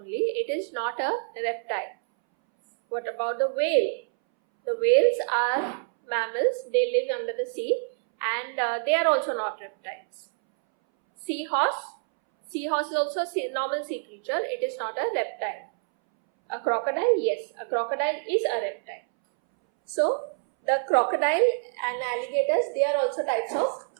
It is not a reptile. What about the whale? The whales are mammals. They live under the sea and they are also not reptiles. Seahorse. Seahorse is also a normal sea creature. It is not a reptile. A crocodile? Yes, a crocodile is a reptile. So, the crocodile and alligators, they are also types of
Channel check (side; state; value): left; silent; 60 dB below the other